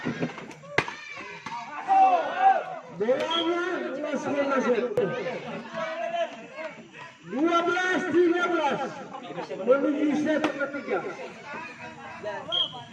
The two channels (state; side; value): identical; both; correlation 1.00